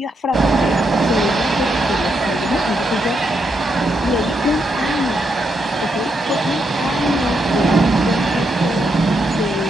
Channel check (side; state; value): both; normal; correlation 0.80